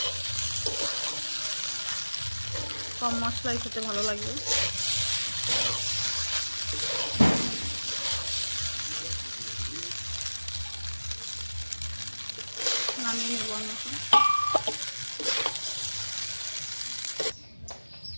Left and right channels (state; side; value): inverted; both; correlation -1.00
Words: কম মশলাই খেতে ভালো লাগবে। নামিয়ে নেব আমি এখন।